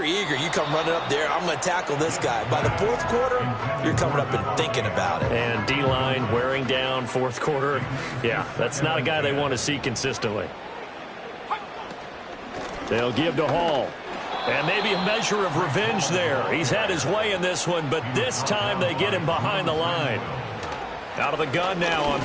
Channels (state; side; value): identical; both; correlation 1.00